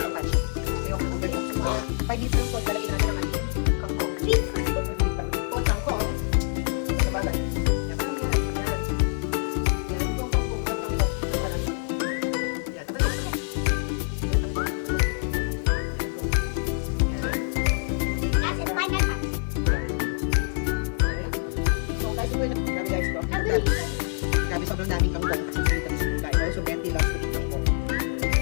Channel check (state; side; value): silent; right; digital silence